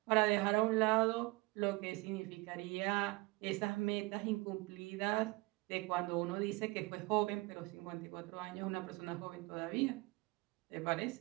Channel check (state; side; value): quieter; left; 23.8 dB